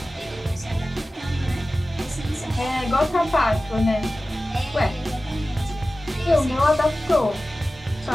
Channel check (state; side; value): normal; both; correlation 0.96